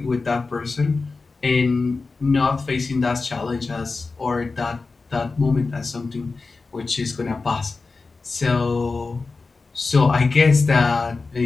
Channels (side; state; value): right; quieter; 4.0 dB